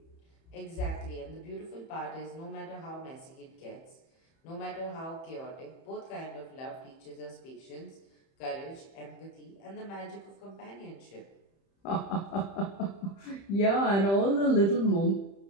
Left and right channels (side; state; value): right; late; 30 ms